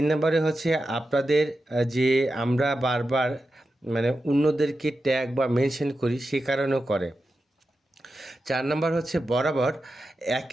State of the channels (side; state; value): both; normal; correlation 0.90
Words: নম্বরে হচ্ছে আপনাদের যে আমরা বারবার অন্যদেরকে ট্যাগ বা মেনশন করি, সে কারণেও করে। 4 নম্বর হচ্ছে বরাবর